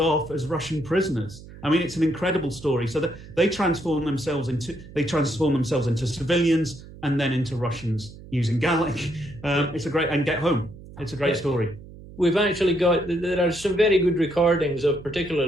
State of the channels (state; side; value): noise; right; hum, 17 dB below the sound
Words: as Russian prisoners. I mean, it's an incredible story. So that they transform themselves into civilians and then into Russians using Gallic. It's a great, and get home. It's a great story. We've actually got, there are some very good recordings of